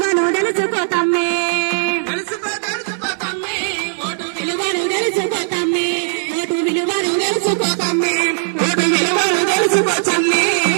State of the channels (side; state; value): left; silent; 68 dB below the other